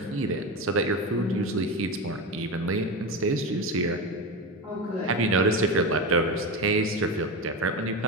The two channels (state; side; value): normal; both; correlation 0.20